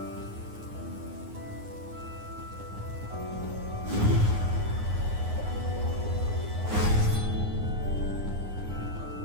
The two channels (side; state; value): left; late; 9.7 ms